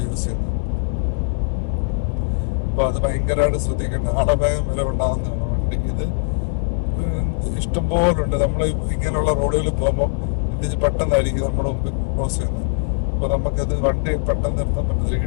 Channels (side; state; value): right; silent; digital silence